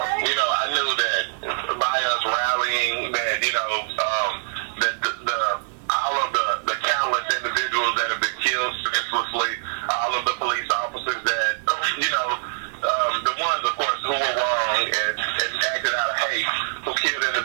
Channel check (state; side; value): silent; left; 57 dB below the other